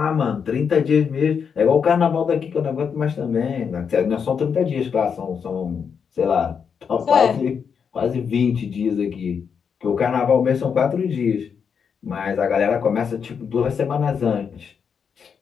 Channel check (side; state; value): right; quieter; 6.7 dB